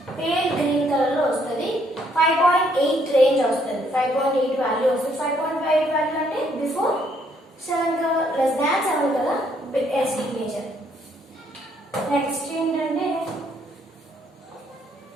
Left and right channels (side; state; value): both; normal; correlation 0.69